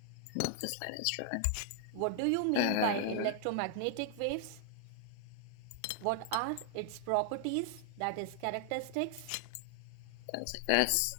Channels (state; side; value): different; both; correlation 0.00